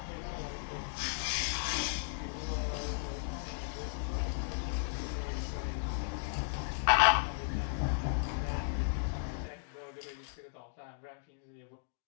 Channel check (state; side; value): silent; right; digital silence